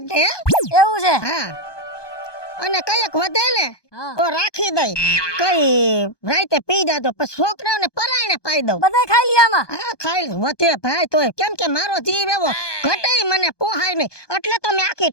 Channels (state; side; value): late; right; 1.2 ms